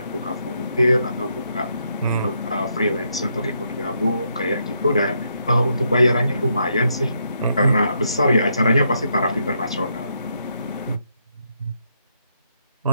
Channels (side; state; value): both; inverted; correlation -0.78